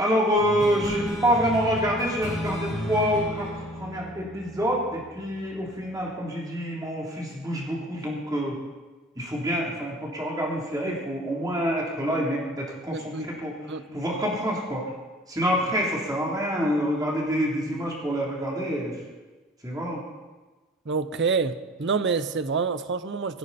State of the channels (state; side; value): normal; both; correlation 0.48